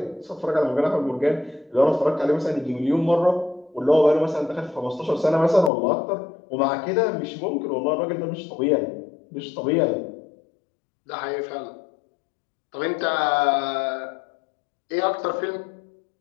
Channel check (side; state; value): right; drops out; at 5.7 s